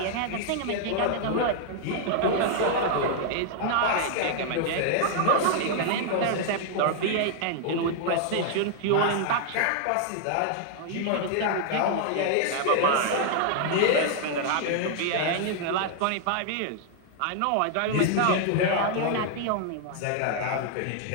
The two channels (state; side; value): different; both; correlation 0.00